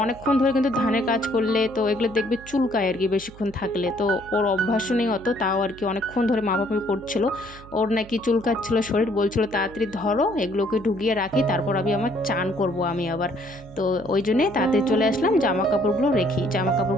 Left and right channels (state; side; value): noise; right; hum, 20 dB below the sound